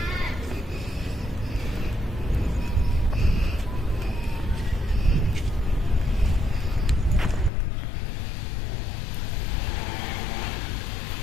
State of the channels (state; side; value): drops out; right; at 7.5 s